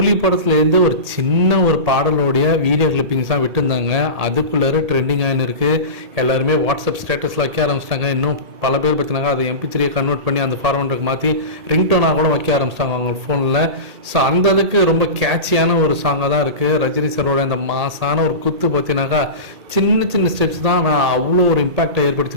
படத்துலேருந்து ஒரு சின்ன ஒரு பாடலோடைய வீடியோ கிளிப்பிங்ஸ் தான் விட்டுருந்தாங்க. அதுக்குள்ளே ட்ரெண்டிங் ஆகின்னு இருக்குது. எல்லாருமே வாட்ஸ்அப் ஸ்டேட்டஸில் வைக்க ஆரம்பிச்சிட்டாங்க. இன்னும் பல பேர் பார்த்தினாங்க அதை MP3 கன்வெர்ட் பண்ணி அந்த ஃபார்மேட்டுக்கு மாற்றி ரிங்டோனாக கூட வைக்க ஆரம்பிச்சிட்டாங்க அவங்க ஃபோனில். ஸோ அந்த அளவுக்கு ரொம்ப கேட்சியான ஒரு சாங்காக தான் இருக்குது. ரஜினி சாரோட இந்த மாசான ஒரு குத்து பார்த்தினாக்கா சின்ன சின்ன ஸ்டெப்ஸ் தான் நான் அவ்வளோ ஒரு இம்பாக்டை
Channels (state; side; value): late; left; 1.8 ms